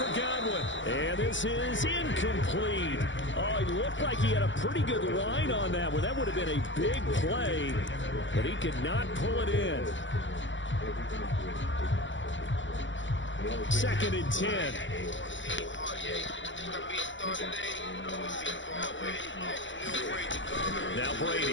Godwin. And this is incomplete. Oh, it looked like he had a pretty good line on that one. That would have been a big play, but he could not pull it in. 2nd and 10. Now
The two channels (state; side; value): late; right; 0.55 ms